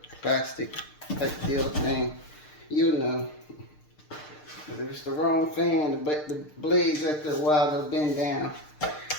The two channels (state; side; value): late; right; 6.6 ms